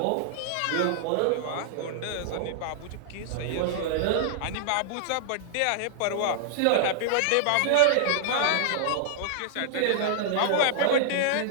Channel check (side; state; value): both; different; correlation -0.01